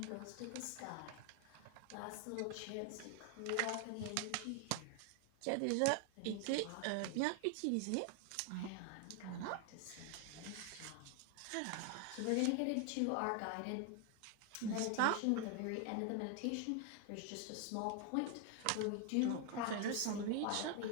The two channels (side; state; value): both; different; correlation 0.00